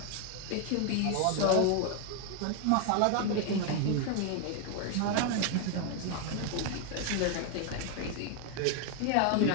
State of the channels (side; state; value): both; different; correlation 0.01